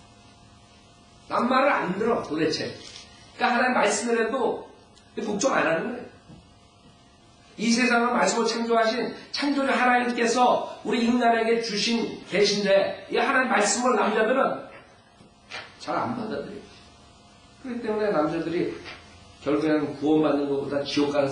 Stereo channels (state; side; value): identical; both; correlation 1.00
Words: 남 말을 안 들어 도대체. 그러니까 하나님 말씀을 해도 복종 안 하는 거예요. 이 세상을 말씀으로 창조하신 창조주 하나님께서 우리 인간에게 주신 계신데 이 하나님 말씀을 남자들은 잘 안 받아들여요. 그렇기 때문에 남자들이 결국에는 구원받는 것보다 지옥 가는